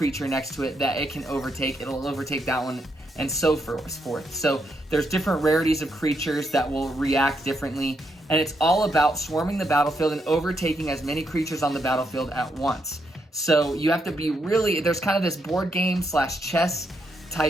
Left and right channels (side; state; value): both; normal; correlation 0.79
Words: next to it that it can overtake, it'll overtake that one and so forth. So there's different rarities of creatures that will react differently, and it's all about swarming the battlefield and overtaking as many creatures on the battlefield at once. So you have to be there's kind of this board game / chess